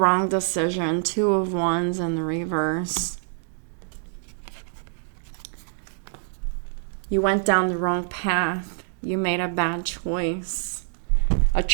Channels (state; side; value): silent; left; digital silence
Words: decision. Two of Wands in the reverse. You went down the wrong path. You made a bad choice. A